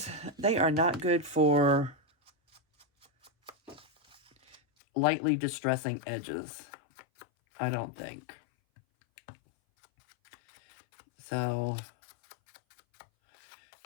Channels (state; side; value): drops out; right; at 4.6 s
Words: They are not good for lightly distressing edges, I don't think. So